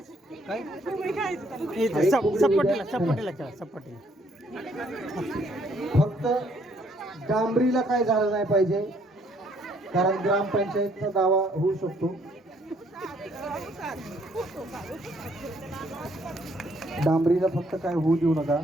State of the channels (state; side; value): normal; both; correlation 0.66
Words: काय सपाटीला फक्त डांबरीला काय झालं नाही पाहिजे, कारण ग्रामपंचायतचा दावा होऊ शकतो. डांबरीला फक्त काय होऊ देऊ नका.